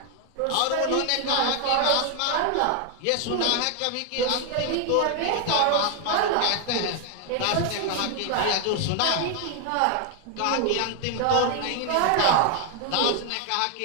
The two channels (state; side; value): different; both; correlation 0.00